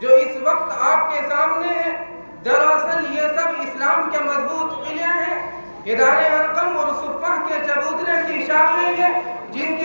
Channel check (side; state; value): both; inverted; correlation -1.00